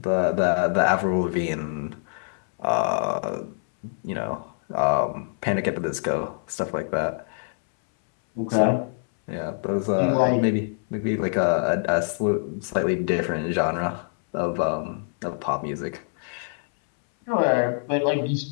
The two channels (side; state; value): right; silent; 62 dB below the other